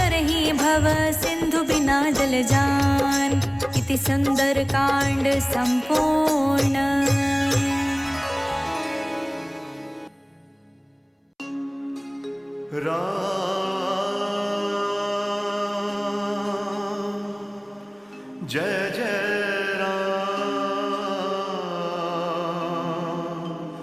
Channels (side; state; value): both; identical; correlation 1.00